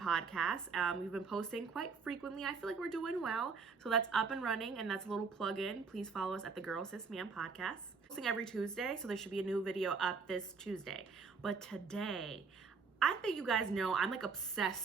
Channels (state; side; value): quieter; left; 5.1 dB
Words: We've been posting quite frequently. I feel like we're doing well. So that's up and running, and that's a little plug-in. Please follow us at the Girl Sis Man podcast. Posting every Tuesday, so there should be a new video up this Tuesday. But today, I think you guys know I'm like